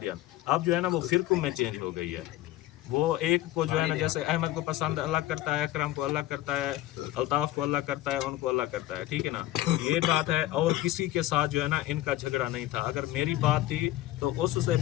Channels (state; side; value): quieter; right; 15.5 dB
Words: اب جو ہے نا وہ فرقوں میں چینج ہو گئی ہے. وہ ایک کو جو ہے نا جیسے احمد کو پسند اللہ کرتا ہے اکرم کو اللہ کرتا ہے الطاف کو اللہ کرتا ہے ان کو اللہ کرتا ہے ٹھیک ہے نا یہ بات ہے. اور کسی کے ساتھ جو ہے نا ان کا جھگڑا نہیں تھا. اگر میری بات تھی تو اس سے